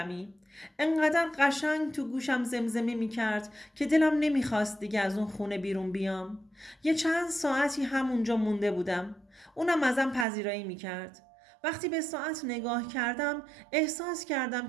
انقدر قشنگ تو گوشم زمزمه می کرد که دلم نمیخواست دیگه از اون خونه بیرون بیام. یه چند ساعتی همونجا مونده بودم. اونم ازم پذیرایی میکرد. وقتی به ساعت نگاه کردم احساس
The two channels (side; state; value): left; drops out; at 10.2 s